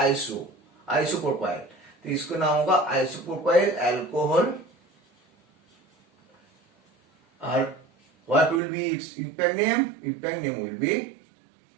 तो इसको नाम होगा आइसोप्रोपाइल एल्कोहल। और what will be its impact name? Impact name will be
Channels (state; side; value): drops out; left; at 8.6 s